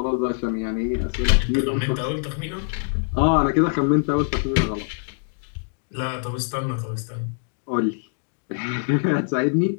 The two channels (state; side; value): silent; right; digital silence